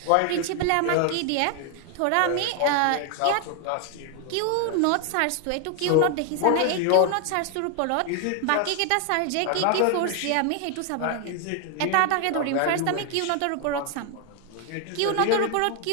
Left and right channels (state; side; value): different; both; correlation 0.01